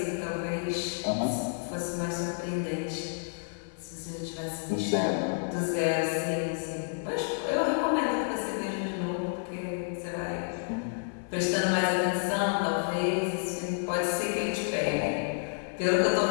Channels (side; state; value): right; silent; 58 dB below the other